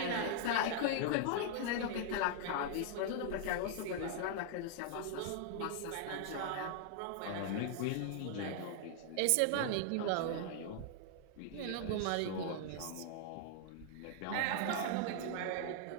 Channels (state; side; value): different; both; correlation -0.01